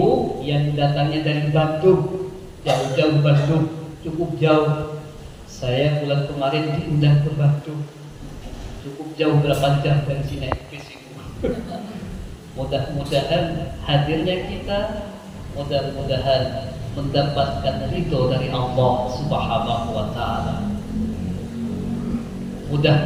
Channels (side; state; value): both; identical; correlation 1.00